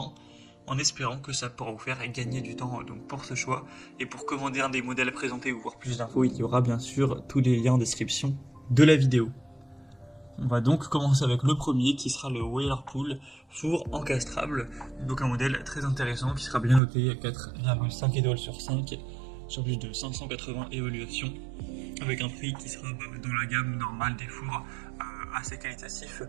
en espérant que ça pourra vous faire gagner du temps donc pour ce choix. Et pour commander un des modèles présentés ou voir plus d'infos, il y aura bien sûr tous les liens en description de la vidéo. On va donc commencer avec le premier qui sera le Whirlpool four encastrable, donc un modèle très intéressant qui sera bien noté à 4,5 étoiles sur 5 sur plus de 580 évaluations avec un prix qui sera dans la gamme normale des fours assez qualitatif.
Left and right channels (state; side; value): drops out; left; at 16.8 s